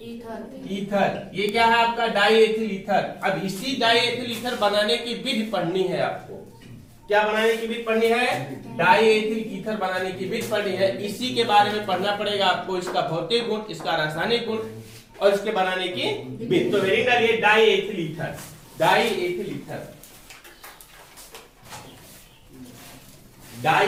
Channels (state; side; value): identical; both; correlation 1.00